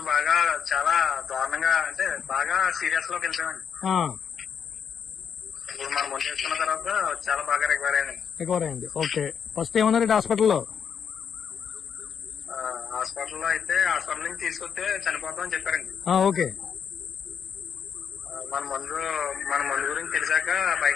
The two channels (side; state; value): right; quieter; 7.3 dB